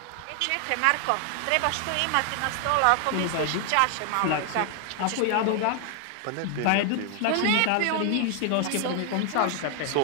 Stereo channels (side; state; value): both; different; correlation 0.00